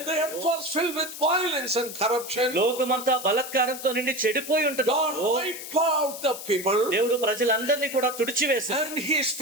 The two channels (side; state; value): left; noise; hiss, 10 dB below the sound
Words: the earth was filled with violence and corruption, లోకమంతా బలత్కారంతో నిండి చెడిపోయి ఉంటుంది. God wiped out the people దేవుడు ప్రజలందరినీ కూడా తుడిచివేశాడు. and he